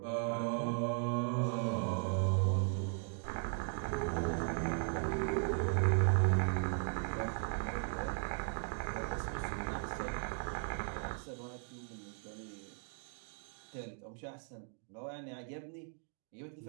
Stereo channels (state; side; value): silent; left; 53 dB below the other